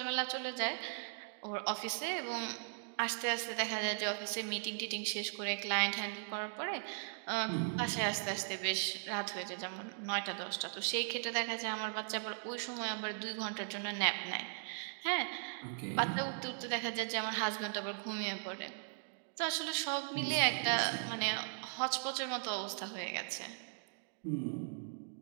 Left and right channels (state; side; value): silent; left; digital silence